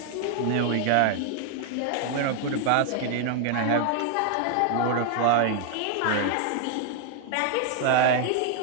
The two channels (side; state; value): both; different; correlation 0.00